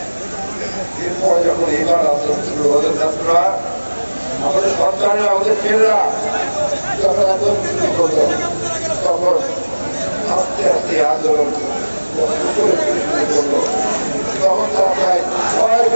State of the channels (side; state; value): both; inverted; correlation -1.00